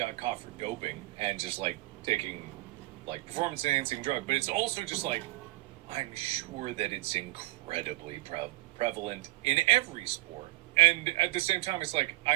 caught for doping and just taking performance enhancing drug. But it's also just I'm sure that it's incredibly prevalent in every sport. And at the same time, it's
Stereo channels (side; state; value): left; quieter; 20.1 dB